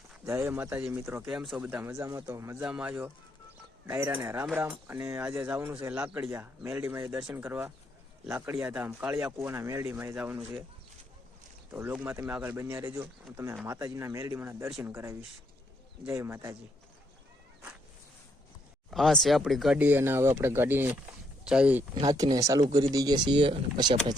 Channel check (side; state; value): both; normal; correlation 0.73